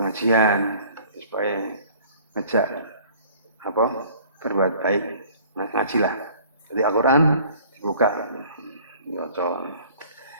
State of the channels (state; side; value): inverted; both; correlation -0.52